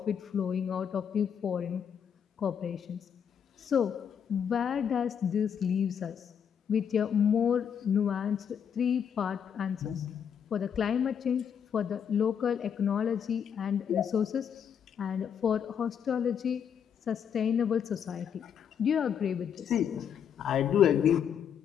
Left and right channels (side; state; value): right; quieter; 7.9 dB